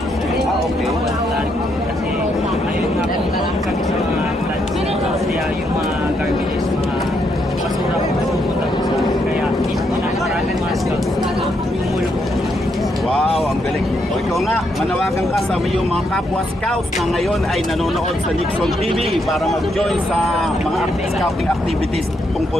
sir. Okay. Kasi ayun nga po kami sa mga floods. Kaya yung mga garbages, mga basura po pupunta po sa kaya mismo na maraming mga scouts tumulong po. Wow, ang galing. O ikaw nga, manawagan ka sa iyong mga kapwa scouts na ngayon ay nanonood sa Nixon TV para mag-join sa mga scouting activities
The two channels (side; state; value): both; normal; correlation 0.77